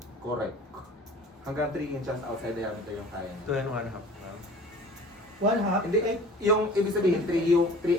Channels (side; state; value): both; normal; correlation 0.45